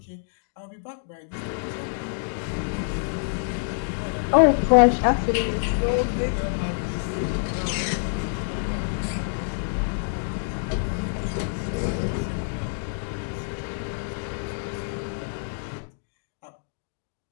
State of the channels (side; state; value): right; silent; digital silence